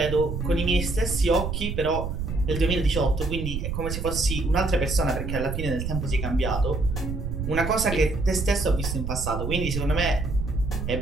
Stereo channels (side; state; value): right; noise; rumble, 4 dB below the sound